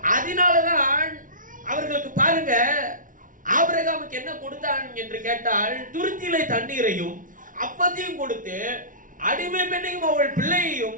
அதனாலதான் அவர்களுக்கு பாருங்க, ஆபிரகாமுக்கு என்ன கொடுத்தான் என்று கேட்டால், துருத்தியிலே தண்ணீரையும் அப்பத்தையும் கொடுத்து அடிமை பெண்ணையும் அவள் பிள்ளையையும்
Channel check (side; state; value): left; late; 0.38 ms